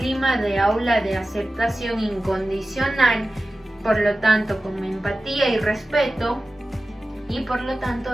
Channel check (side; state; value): both; normal; correlation 0.95